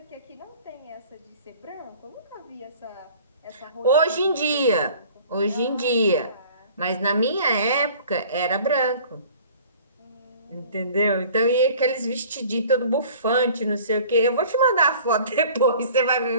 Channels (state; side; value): inverted; both; correlation -0.48